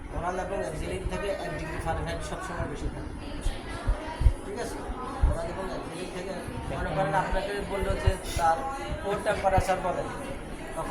ওরাল এবং এক্সিলিন থেকে 1 ডিগ্রি ফারেনহাইট সবসময় বেশি থাকে, ঠিক আছে। ওরাল এবং এক্সিলিন থেকে মনে করেন আপনাকে বললো যে তার কোর টেম্পারেচার বলেন,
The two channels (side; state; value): both; identical; correlation 1.00